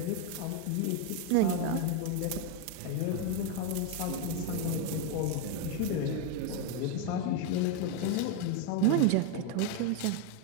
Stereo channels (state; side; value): different; both; correlation 0.02